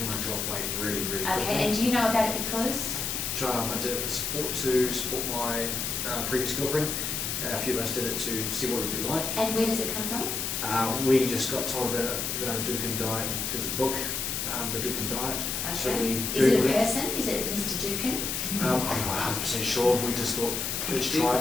want to drop weight really, really quickly. Okay, and do you know about it because? I did it for support, to support my previous girlfriend. A few of us did it to see what it would be like. And where does it come from? We just got told about a Duncan diet. There's a book, The Duncan Diet. So Okay. we Is it a Googled person? Is it Mr. Dukin? I'm not 100% sure. We just thought, let's try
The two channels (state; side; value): noise; left; hiss, 2 dB below the sound